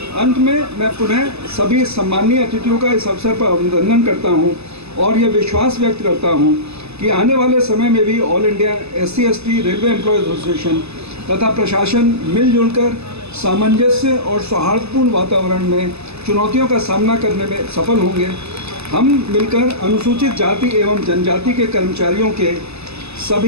अंत में मैं पुनः सभी सम्मानीय अतिथियों का इस अवसर पर अभिनंदन करता हूं और ये विश्वास व्यक्त करता हूं कि आने वाले समय में भी all India SC/ST railway employees association तथा प्रशासन मिलजुल कर सामंजस्य और सौहार्दपूर्ण वातावरण में चुनौतियों का सामना करने में सफल होंगे। हम मिलकर अनुसूचित जाति एवं जनजाति के कर्मचारियों के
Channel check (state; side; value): late; left; 0.79 ms